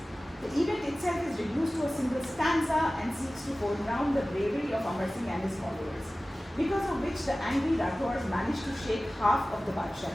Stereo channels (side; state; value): both; normal; correlation 0.97